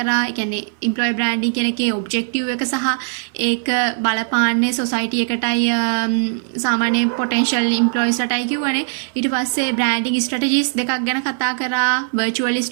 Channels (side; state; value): left; silent; 63 dB below the other